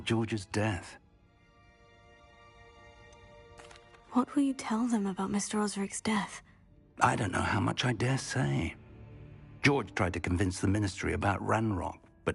George's death. What will you tell them about Mr. Osric's death? I don't know how much I dare say. George tried to convince the ministry about Ranrock,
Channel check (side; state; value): both; identical; correlation 1.00